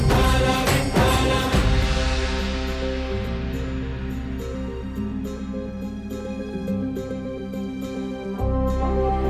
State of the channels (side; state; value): both; identical; correlation 1.00